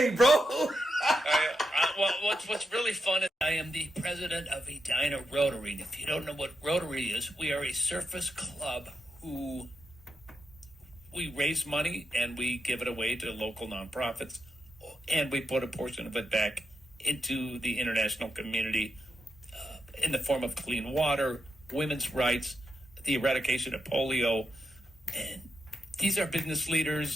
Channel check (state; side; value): normal; both; correlation 0.84